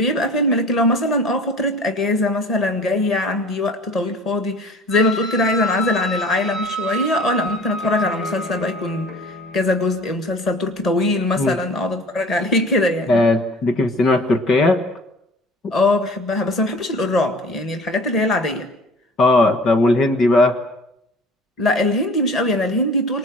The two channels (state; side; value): normal; both; correlation 0.45